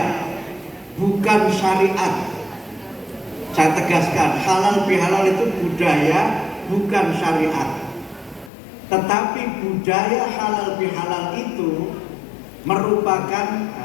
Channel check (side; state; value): right; drops out; at 8.5 s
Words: bukan syariat. Saya tegaskan, halal bihalal itu budaya, bukan syariat. Tetapi budaya halal bihalal itu merupakan,